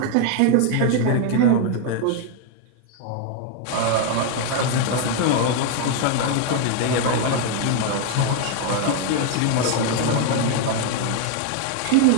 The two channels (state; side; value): different; both; correlation 0.00